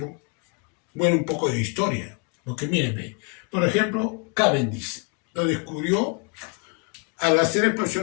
poco de historia. Porque miren, por ejemplo, Cavendish lo descubrió al hacer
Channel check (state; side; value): quieter; right; 33.9 dB